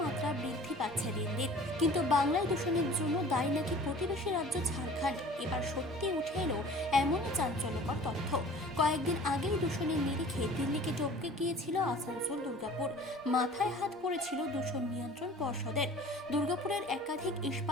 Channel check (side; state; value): both; normal; correlation 0.46